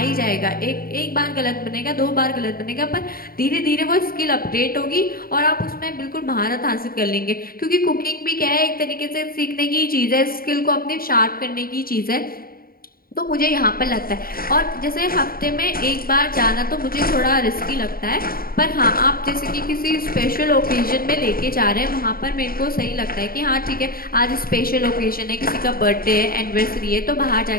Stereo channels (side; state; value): right; late; 0.43 ms